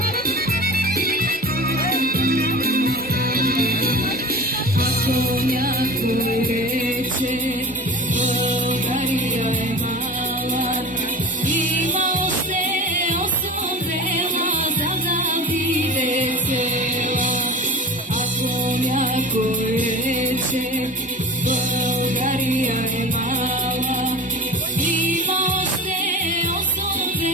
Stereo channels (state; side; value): normal; both; correlation 0.34